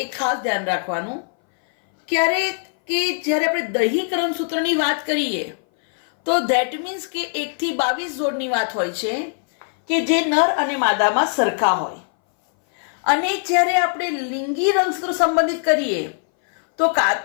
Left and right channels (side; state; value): right; silent; 60 dB below the other